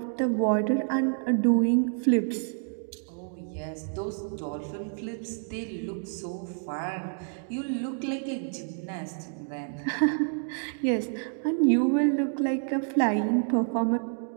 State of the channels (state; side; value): silent; left; 59 dB below the other